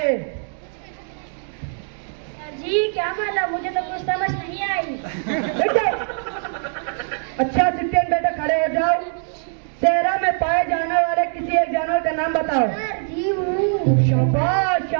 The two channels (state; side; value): silent; left; 60 dB below the other